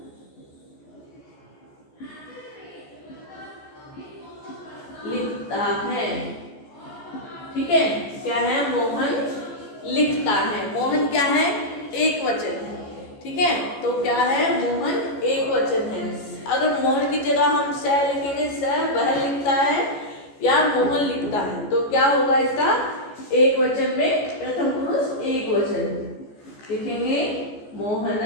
लिखता है, ठीक है, क्या है, मोहन लिखता है। मोहन क्या है, एक वचन है, ठीक है, तो क्या है, मोहन एक वचन है। अगर मोहन की जगह हम स लिखेंगे, स वह लिखता है या मोहन लिखता है, तो क्या होगा इसका, एक वचन में प्रथम पुरुष एक वचन लिखेंगे, मोहन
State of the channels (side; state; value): right; late; 14 ms